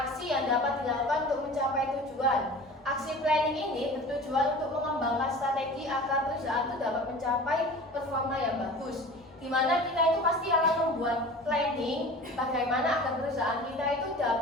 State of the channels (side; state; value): both; normal; correlation 0.39